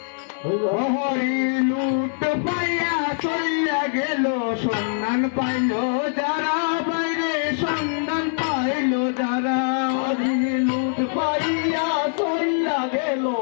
হরি লুট পাইয়া চইয়া গেল সন্ধান পাইল যারা বাইরে সন্ধান পাইল যারা হরি লুট পাইয়া চইয়া গেল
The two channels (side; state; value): right; silent; 58 dB below the other